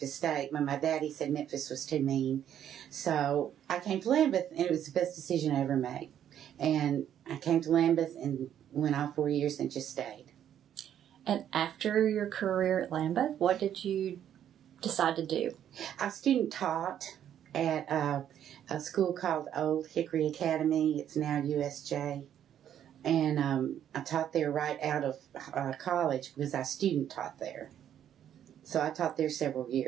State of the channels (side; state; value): left; quieter; 10.1 dB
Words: State. My daddy said Memphis was too mean. So I came to Lambeth, and it was the best decision I ever made. And I came to Lambeth and went all 4 years and just stayed. And after your career at Lambeth, what did you decide to do? I student taught at a school called Old Hickory Academy. It's now USJ. And I taught there right out of college because I student taught there. So I taught there several